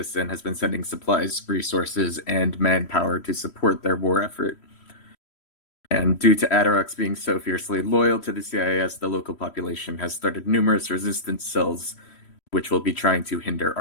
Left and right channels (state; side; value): late; right; 3.1 ms